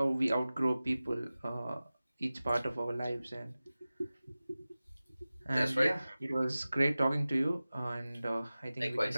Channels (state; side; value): inverted; both; correlation -0.97